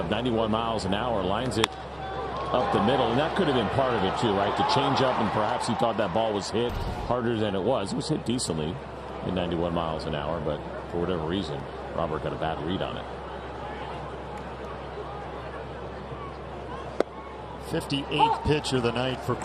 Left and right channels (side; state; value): both; identical; correlation 1.00